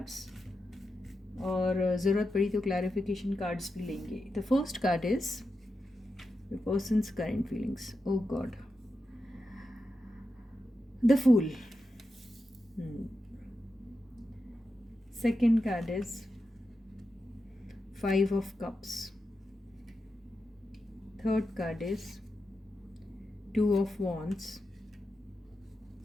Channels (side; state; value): both; normal; correlation 0.89